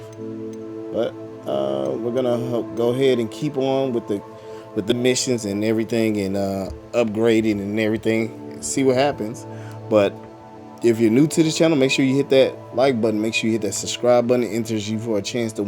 But we're gonna go ahead and keep on with the missions and everything, and upgrading and everything, see what happens. But if you're new to the channel, make sure you hit that like button, make sure you hit that subscribe button. It enters you for a chance to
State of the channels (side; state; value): both; identical; correlation 1.00